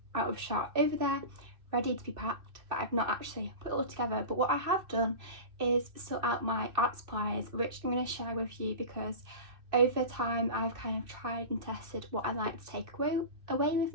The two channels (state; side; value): late; left; 2.4 ms